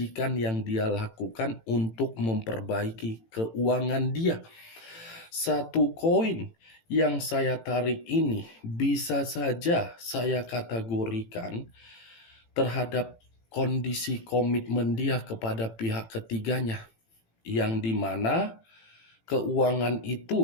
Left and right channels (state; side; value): late; right; 18 ms